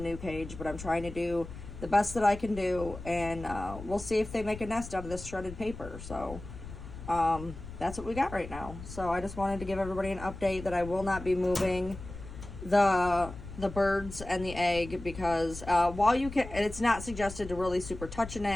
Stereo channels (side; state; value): left; noise; rumble, 12 dB below the sound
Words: cage. But I'm trying to do the best that I can do, and we'll see if they make a nest out of this shredded paper. So that's what we got right now. So I just wanted to give everybody an update that I will not be moving the birds and the egg, because while you can, it's not suggested to really super touch an